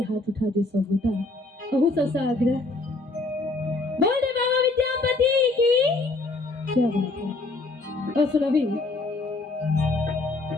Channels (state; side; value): quieter; right; 3.2 dB